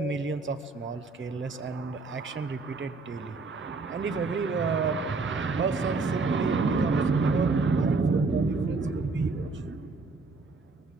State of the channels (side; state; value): left; quieter; 3.9 dB